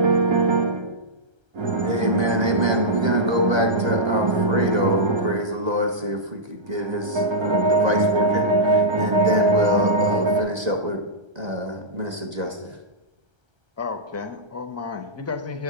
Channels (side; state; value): left; late; 1.9 ms